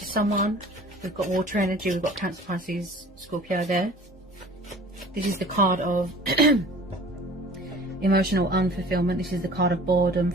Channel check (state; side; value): normal; both; correlation 0.46